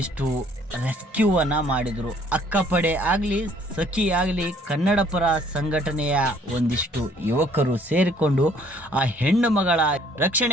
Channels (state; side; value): normal; both; correlation 0.60